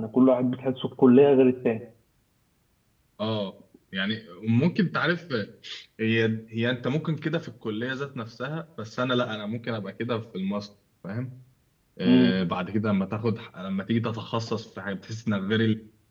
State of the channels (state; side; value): identical; both; correlation 1.00